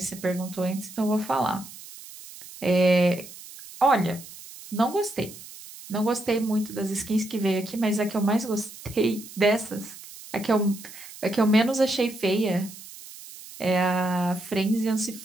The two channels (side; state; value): right; noise; hiss, 16 dB below the sound